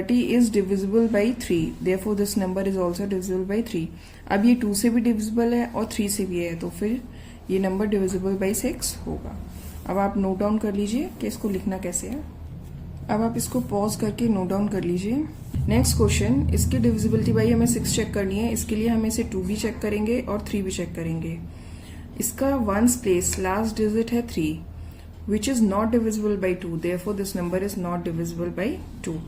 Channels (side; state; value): both; identical; correlation 1.00